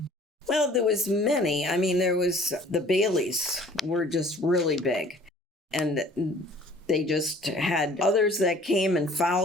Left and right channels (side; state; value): both; normal; correlation 0.52